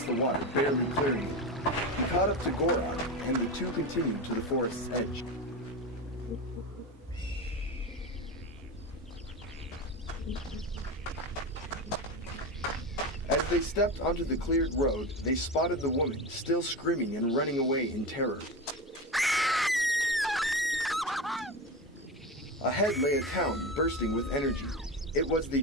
the water, barely clearing it. He caught up to Gorok, and the two continued to the forest's edge. As they stepped onto the cleared road, they spotted the woman, still screaming and running away in terror. Ahead lay a town bursting with energy. It was the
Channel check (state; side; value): normal; both; correlation 0.22